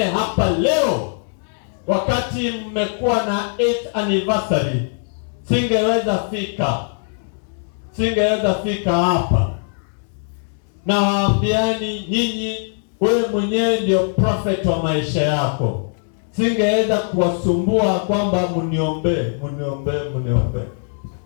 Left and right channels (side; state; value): right; silent; digital silence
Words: hapa leo. Wakati mmekuwa na 8th anniversary, singeweza fika hapa. Na waambiani nyinyi, wewe mwenyewe ndio prophet wa maisha yako. Singeweza kuwasumbua kwamba mniombe.